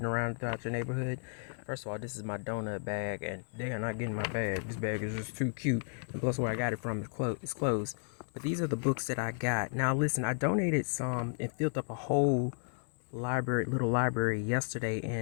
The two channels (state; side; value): silent; right; digital silence